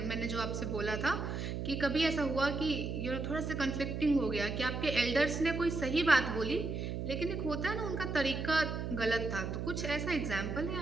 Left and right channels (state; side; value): noise; right; hum, 3 dB below the sound